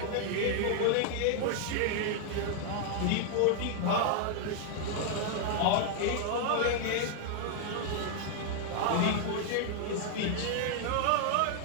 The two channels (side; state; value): both; different; correlation 0.00